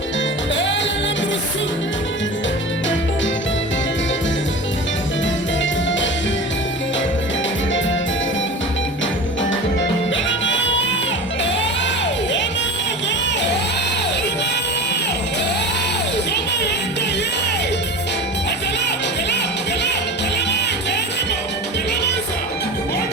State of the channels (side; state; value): both; normal; correlation 0.32